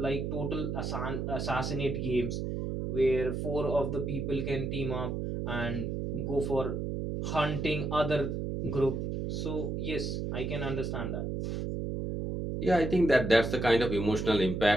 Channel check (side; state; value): right; noise; hum, 2 dB below the sound